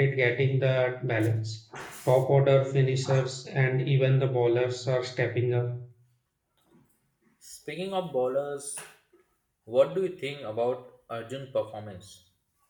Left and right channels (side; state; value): both; identical; correlation 1.00